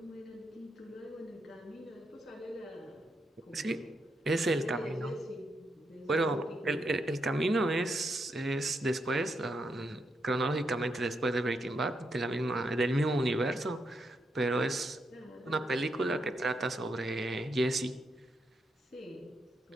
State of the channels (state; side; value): normal; both; correlation 0.81